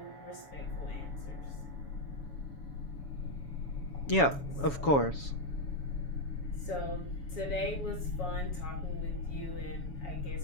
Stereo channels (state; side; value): late; right; 7.1 ms